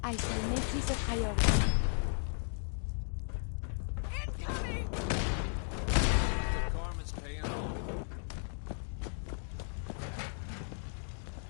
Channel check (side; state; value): right; silent; 54 dB below the other